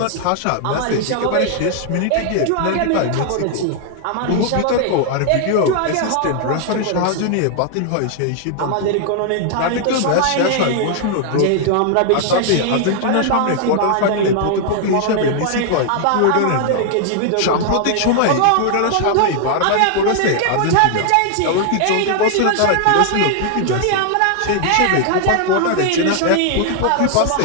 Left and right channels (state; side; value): different; both; correlation 0.00